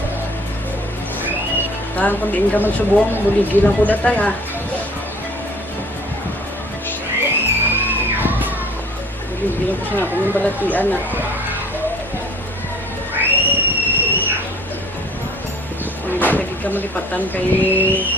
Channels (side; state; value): both; normal; correlation 0.51